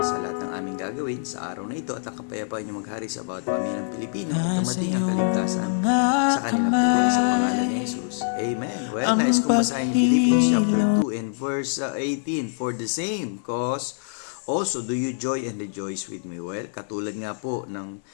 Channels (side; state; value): right; silent; digital silence